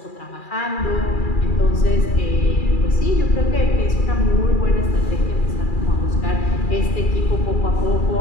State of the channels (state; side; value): late; right; 2.4 ms